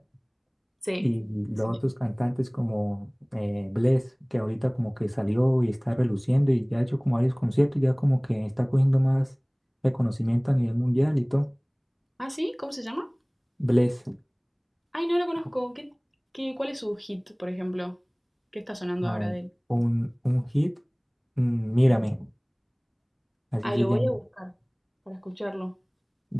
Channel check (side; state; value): both; identical; correlation 1.00